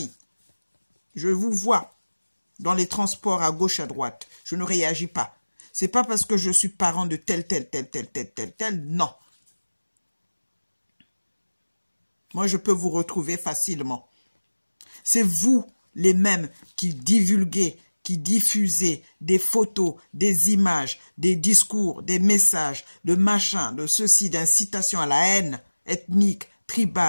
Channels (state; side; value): inverted; both; correlation -1.00